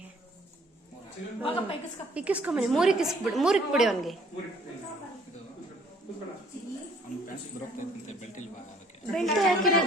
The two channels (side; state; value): both; normal; correlation 0.59